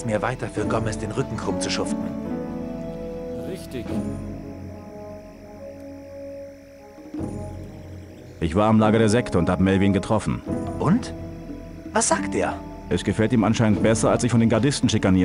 mir weiter für Gomez den Rücken krumm zu schuften. Richtig. Ich war am Lager der Sekte und habe Melvin getroffen. Und? Was sagt er? Es gefällt ihm anscheinend besser, als sich von den Gardisten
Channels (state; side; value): identical; both; correlation 1.00